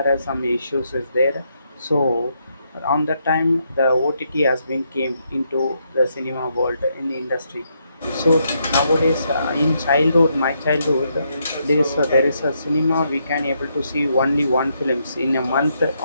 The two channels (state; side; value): inverted; both; correlation -0.77